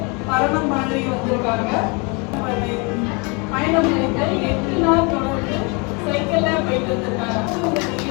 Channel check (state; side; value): quieter; right; 30.7 dB